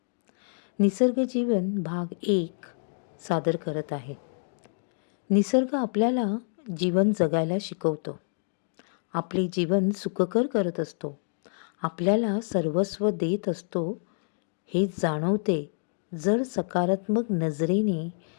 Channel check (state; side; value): silent; right; digital silence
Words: निसर्ग जीवन भाग 1 सादर करत आहे. निसर्ग आपल्याला जीवन जगायला शिकवतो. आपले जीवन सुखकर करत असतो. आपल्याला सर्वस्व देत असतो हे जाणवते जर सकारात्मक नजरेने